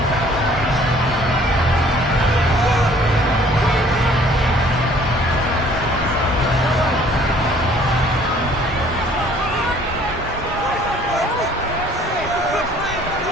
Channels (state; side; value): normal; both; correlation 0.56